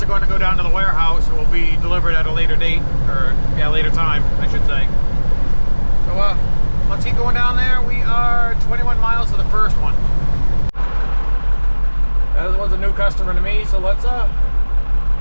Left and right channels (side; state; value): both; inverted; correlation -1.00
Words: are going to go down to the warehouse and will be delivered at a later date, or yeah, later time, I should say. So let's keep going down there. We are 21 miles to the first one. That was a new customer to me, so let's